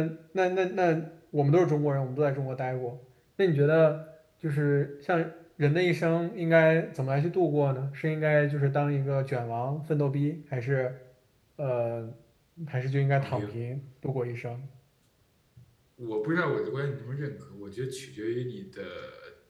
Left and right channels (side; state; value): both; identical; correlation 1.00